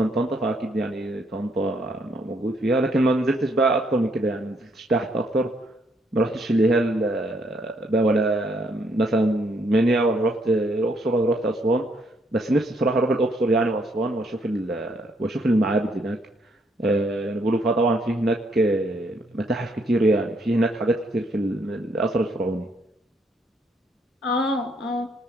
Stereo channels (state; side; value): normal; both; correlation 0.71